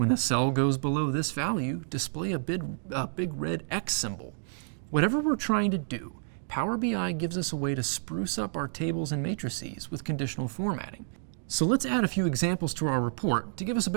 a cell goes below this value, display a big red X symbol. Whatever we're trying to do, Power BI gives us a way to spruce up our tables and matrices with conditional formatting. So let's add a few examples to our report to give us a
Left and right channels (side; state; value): left; silent; digital silence